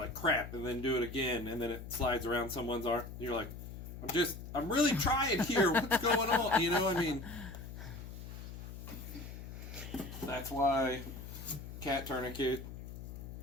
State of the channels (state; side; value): noise; left; hum, 10 dB below the sound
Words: crap, and then do it again and then it slides around someone's arm and you're like, I'm really trying here, what's going on? You know, I mean, that's why cat tourniquet